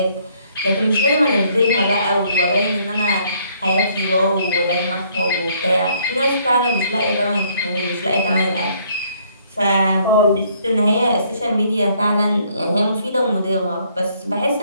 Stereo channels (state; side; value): inverted; both; correlation -0.65